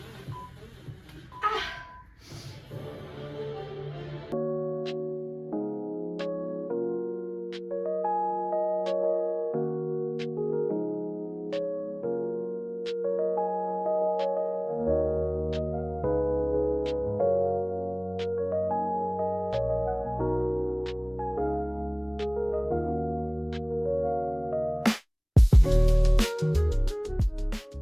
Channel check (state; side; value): identical; both; correlation 1.00